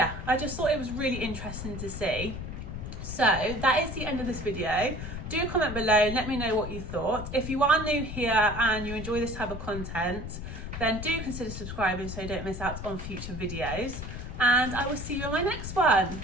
I just thought it was really interesting to see. So that is the end of this video. Do comment below and let me know what you thought. If you are new here and you enjoy this type of content, then do consider subscribing so you don't miss out on future videos. And I will see you in my next one.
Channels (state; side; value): noise; left; rumble, 7 dB below the sound